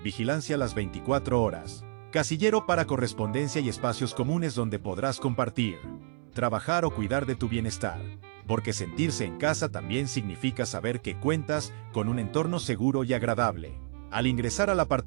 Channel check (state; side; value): silent; left; 58 dB below the other